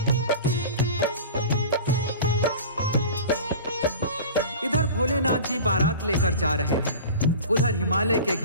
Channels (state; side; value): inverted; both; correlation -0.36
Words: इधर भोलेनाथ जी बारात लेकर जा रहे हैं, उधर हिमालय के